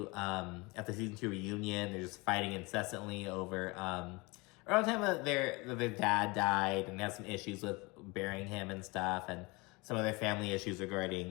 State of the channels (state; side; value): quieter; right; 25.8 dB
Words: at the season 2 reunion. They're just fighting incessantly over around the time that their dad died, and they had some issues with burying him and stuff, and some of their family issues